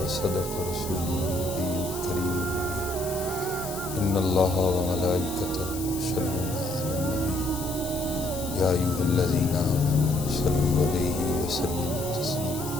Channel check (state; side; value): noise; left; hiss, 11 dB below the sound